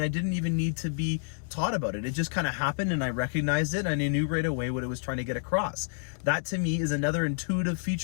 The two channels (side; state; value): right; silent; digital silence